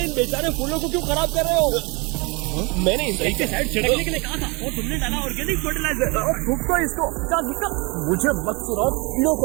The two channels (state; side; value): quieter; left; 28.7 dB